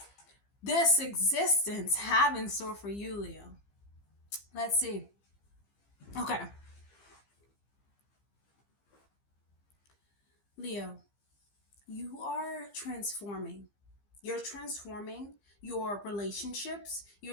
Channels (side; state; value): right; late; 15 ms